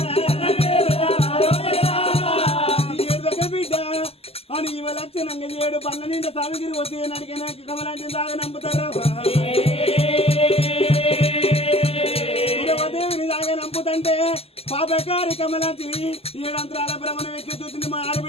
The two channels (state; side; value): late; right; 0.29 ms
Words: బిడ్డ అని ఇవ లక్షణంగా 7 పండ్ల నిండా సామిగిరి వచ్చి నడికిన కమలాంటి దాగా నంపుతారు దేవిని దాగా నంపుతంటే పాపకారి కమలాంటిని 7 అంతరాల భ్రమణం ఎక్కి చూసింది మా